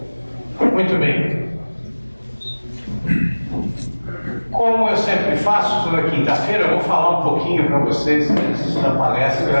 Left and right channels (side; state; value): both; inverted; correlation -1.00